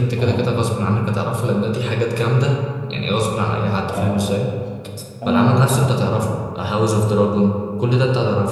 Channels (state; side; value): identical; both; correlation 1.00